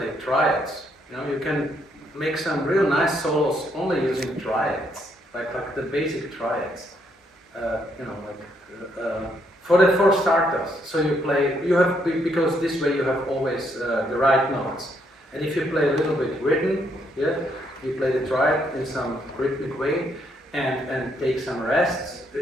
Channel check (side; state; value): both; normal; correlation 0.73